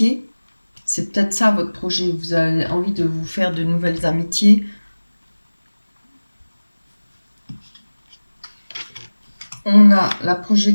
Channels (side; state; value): both; inverted; correlation -1.00